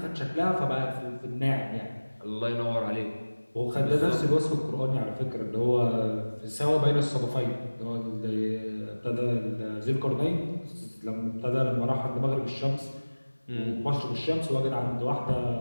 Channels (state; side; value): inverted; both; correlation -1.00